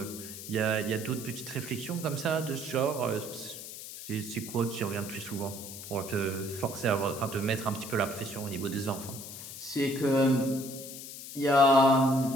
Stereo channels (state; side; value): noise; left; hiss, 11 dB below the sound